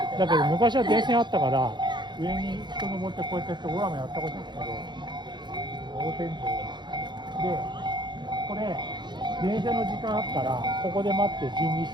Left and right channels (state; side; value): late; left; 0.22 ms